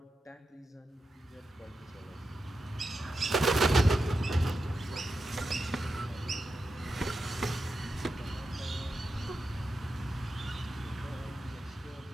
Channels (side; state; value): both; normal; correlation 0.89